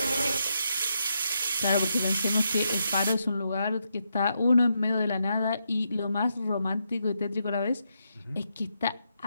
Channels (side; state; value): both; inverted; correlation -0.81